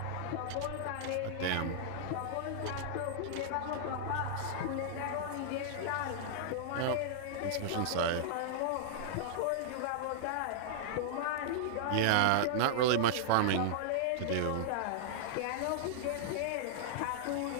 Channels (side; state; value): both; different; correlation -0.01